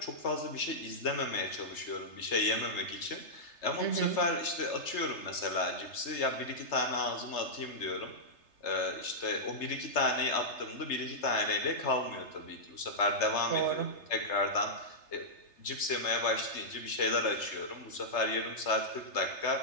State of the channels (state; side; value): late; right; 3.3 ms